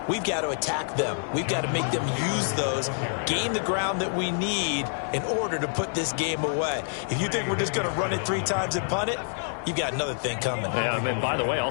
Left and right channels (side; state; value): right; silent; digital silence